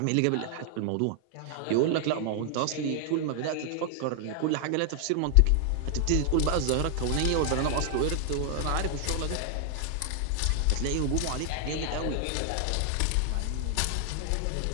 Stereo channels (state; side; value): different; both; correlation 0.00